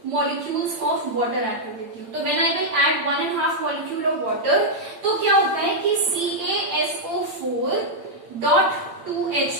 मॉलिक्यूल्स ऑफ वाटर ऐड कर देती हूँ। तो when I will add 1.5 molecule of water, तो क्या होता है कि CaSO4 डॉट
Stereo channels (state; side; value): late; left; 8.7 ms